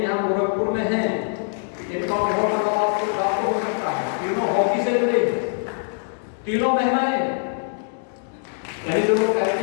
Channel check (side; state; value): right; silent; digital silence